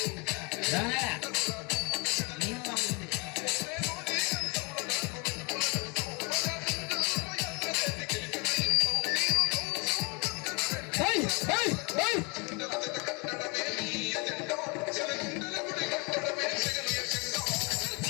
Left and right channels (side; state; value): right; quieter; 30.6 dB